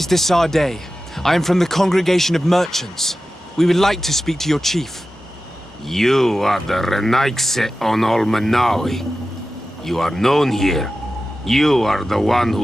Desardet. I am from the Congregation of Merchants. We would like to speak to your chief. You are the Renaigse on Olmenawi. You are known here. You are the one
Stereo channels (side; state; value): both; normal; correlation 0.94